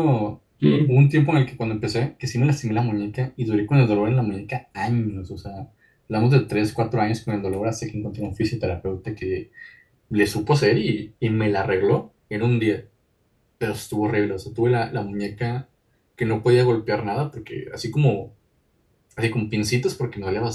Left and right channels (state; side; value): identical; both; correlation 1.00